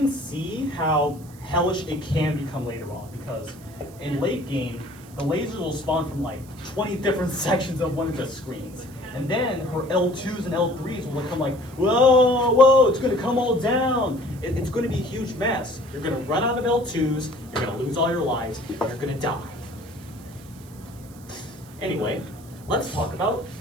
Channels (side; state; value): right; noise; hiss, 23 dB below the sound